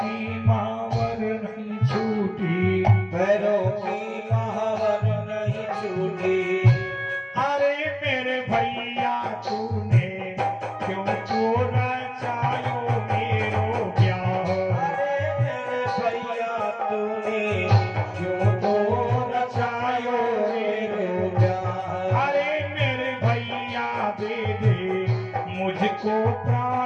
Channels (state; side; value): identical; both; correlation 1.00